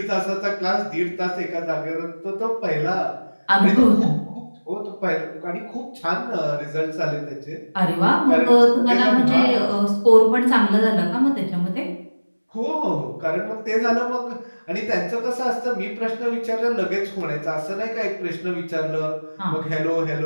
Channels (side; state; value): both; inverted; correlation -1.00